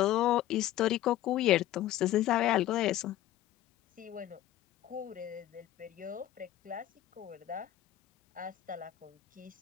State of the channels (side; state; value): right; quieter; 13.5 dB